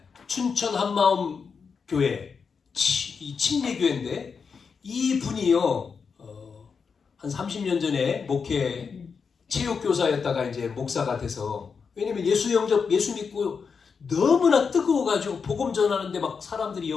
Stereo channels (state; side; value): quieter; right; 5.7 dB